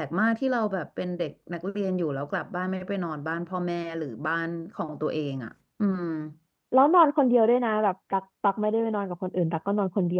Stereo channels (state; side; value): identical; both; correlation 1.00